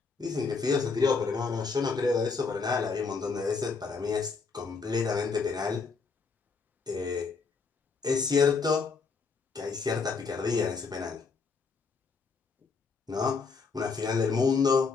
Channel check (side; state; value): right; quieter; 4.8 dB